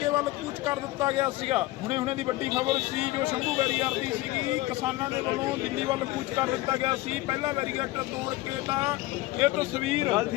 ਵੱਲ ਕੂਚ ਕਰ ਦਿੱਤਾ ਗਿਆ ਸੀਗਾ। ਹੁਣੇ ਦੀ ਵੱਡੀ ਖਬਰ ਸੀ ਜੋ ਸ਼ੰਭੂ ਬੈਰੀਅਰ ਦੀ ਸੀਗੀ। ਕਿਸਾਨਾਂ ਦੇ ਵੱਲੋਂ ਦਿੱਲੀ ਵੱਲ ਕੂਚ ਕਰ ਦਿੱਤਾ ਗਿਆ ਸੀ ਪਹਿਲਾ ਬੈਰੀਗੇਟ ਤੋੜ ਕੇ। ਤਾਂ ਇਹ ਤਸਵੀਰ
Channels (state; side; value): quieter; right; 18.2 dB